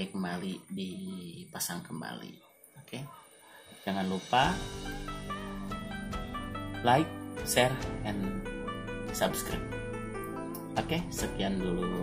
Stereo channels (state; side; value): identical; both; correlation 1.00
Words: kembali, dipasang kembali. Oke. Jangan lupa like, share, and subscribe. Oke, sekian